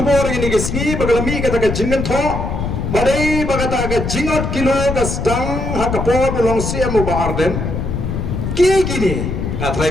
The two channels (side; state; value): left; noise; rumble, 3 dB below the sound